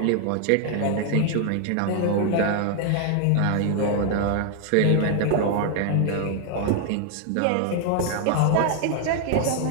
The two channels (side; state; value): both; different; correlation 0.00